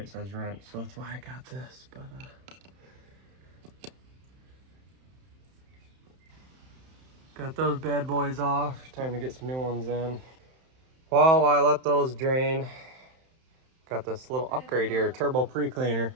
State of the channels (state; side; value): late; left; 31 ms